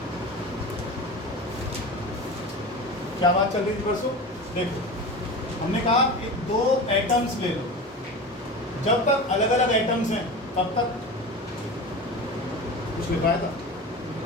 क्या बात चल रही थी परसों? देखो, हमने कहा कि 2 एटम्स ले लो, जब तक अलग अलग एटम्स हैं तब तक कुछ लिखाया था।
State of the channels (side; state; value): both; normal; correlation 0.30